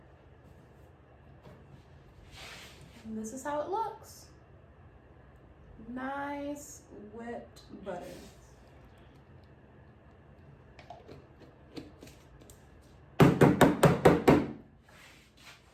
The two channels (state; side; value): identical; both; correlation 1.00